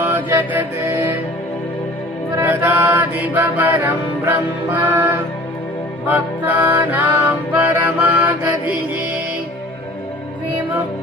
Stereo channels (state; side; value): normal; both; correlation 0.47